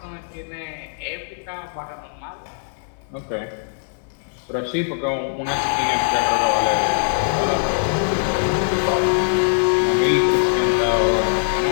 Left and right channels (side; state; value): right; silent; 63 dB below the other